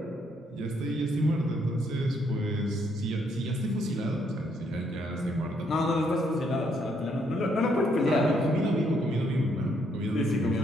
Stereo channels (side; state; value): both; normal; correlation 0.72